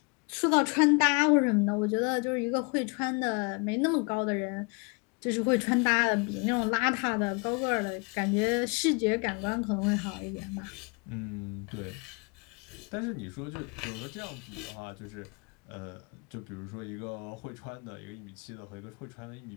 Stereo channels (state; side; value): quieter; right; 31.8 dB